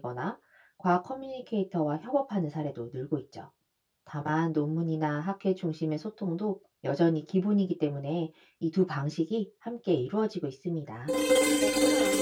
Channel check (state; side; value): identical; both; correlation 1.00